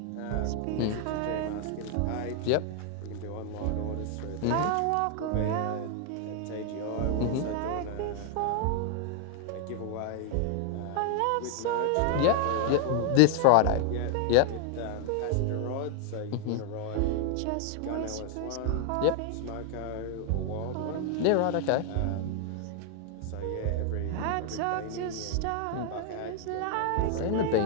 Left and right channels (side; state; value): both; different; correlation 0.00